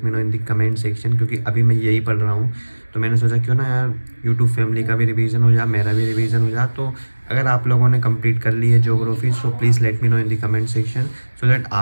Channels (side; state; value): both; inverted; correlation -1.00